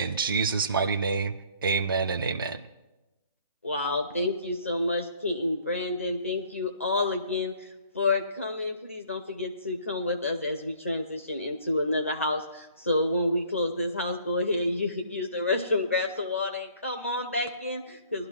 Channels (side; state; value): both; inverted; correlation -0.56